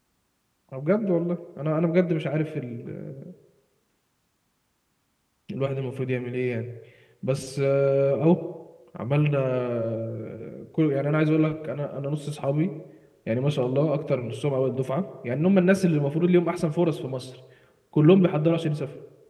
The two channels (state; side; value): identical; both; correlation 1.00